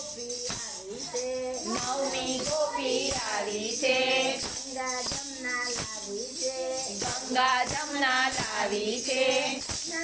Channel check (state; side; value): noise; left; hum, 29 dB below the sound